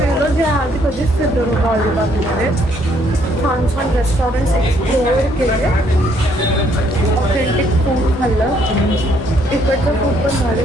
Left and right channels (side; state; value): both; normal; correlation 0.68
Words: जे आधी कधीच फिरलो नव्हतं अलिबागमध्ये. छान छान रेस्टॉरंट्स एक्सप्लोअर केले. ऑथेंटिक फूड खाल्लं. इकडचं फूड पण